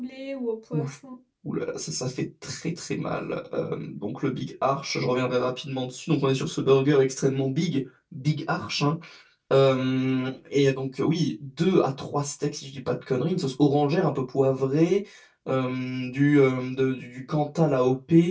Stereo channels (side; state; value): both; identical; correlation 1.00